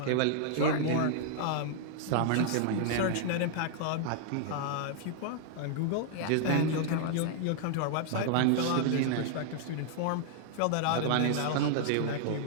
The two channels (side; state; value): both; different; correlation -0.01